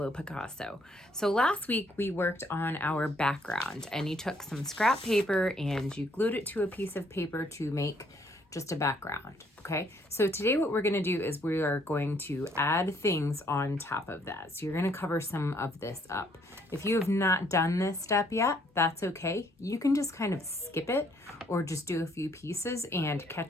Picasso. So last week we worked on our background, and you took some scrap paper and you glued it to a piece of paper to make just a background. Okay, so today what we're going to do is we are going to add things on top of that. So you're going to cover some of this up. If you have not done this step yet, that's okay. You can just kind of skip it or just do a few pieces and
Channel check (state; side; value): normal; both; correlation 0.66